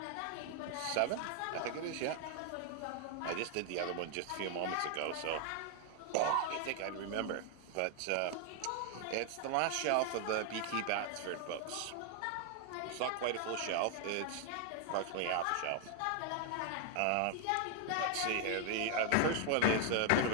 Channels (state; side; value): different; both; correlation 0.00